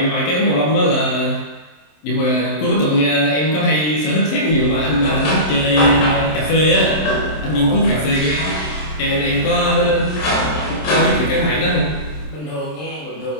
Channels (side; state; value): right; late; 27 ms